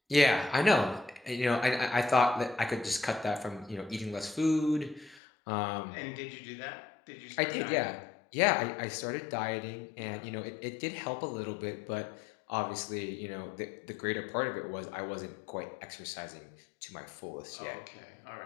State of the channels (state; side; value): drops out; right; at 5.2 s